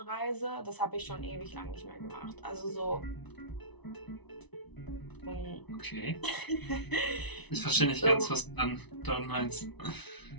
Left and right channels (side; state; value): right; late; 0.99 ms